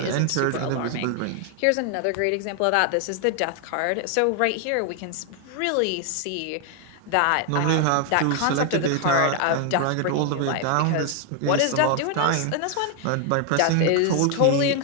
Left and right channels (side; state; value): both; different; correlation 0.00